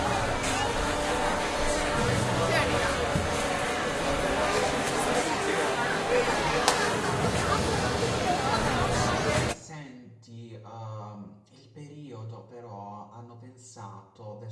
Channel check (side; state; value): both; identical; correlation 1.00